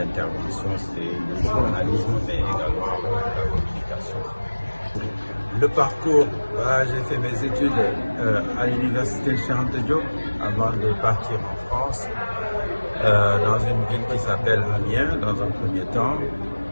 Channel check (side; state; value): both; inverted; correlation -1.00